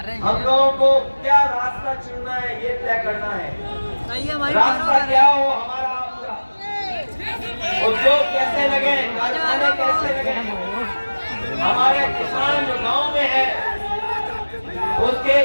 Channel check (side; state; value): both; inverted; correlation -1.00